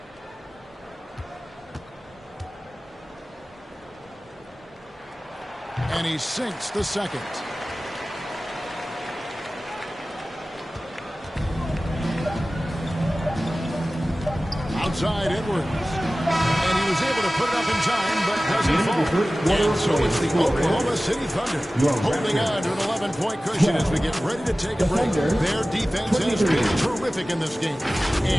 And he sinks the second. Outside Edwards. And he was able to put it up in time, but doesn't fall. And so it's the Oklahoma City Thunder holding on to an 11-point cushion as we get ready to take a break. Their defense has been terrific in this game.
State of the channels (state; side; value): normal; both; correlation 0.97